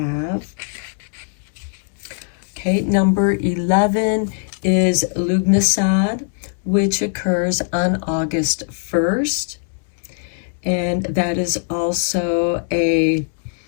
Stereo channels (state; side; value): silent; right; digital silence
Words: okay, number 11 is Lugnasad, which occurs on August 1st. And that is also a